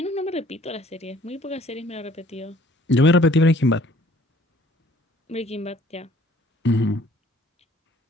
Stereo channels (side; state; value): both; normal; correlation 0.57